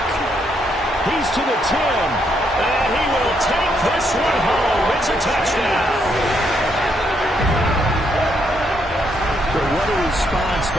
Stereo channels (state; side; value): normal; both; correlation 0.75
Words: He's to the 10. And he will take this one home. It's a touchdown. What a response